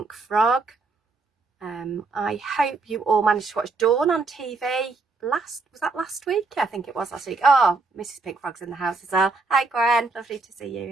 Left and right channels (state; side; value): quieter; left; 3.8 dB